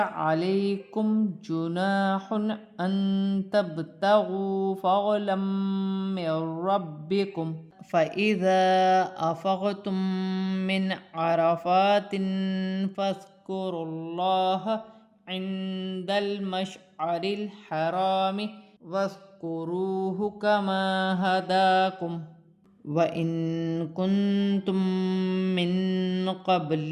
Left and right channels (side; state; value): both; identical; correlation 1.00